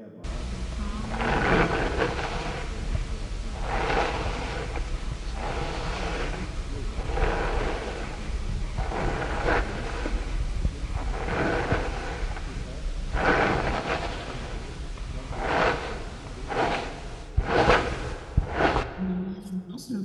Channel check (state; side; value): identical; both; correlation 1.00